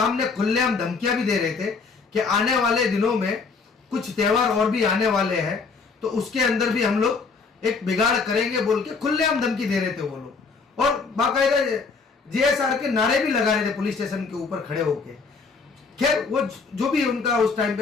खुलेआम धमकियां भी दे रहे थे कि आने वाले दिनों में कुछ त्यौहार और भी आने वाले हैं, तो उसके अंदर भी हम लोग एक बिगाड़ करेंगे बोल के खुलेआम धमकी दे रहे थे वो लोग, और बाकायदा जीएसआर के नारे भी लगा रहे थे पुलिस स्टेशन के ऊपर खड़े होके। खैर, वो जो भी उनका उस टाइम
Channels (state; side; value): quieter; right; 4.7 dB